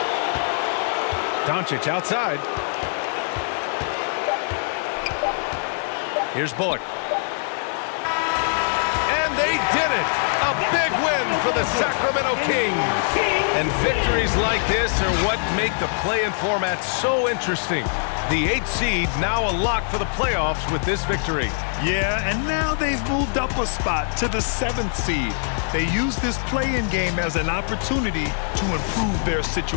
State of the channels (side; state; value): right; silent; 63 dB below the other